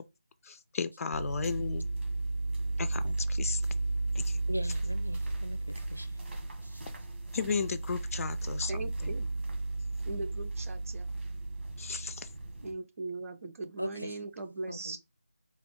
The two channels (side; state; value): both; inverted; correlation -0.84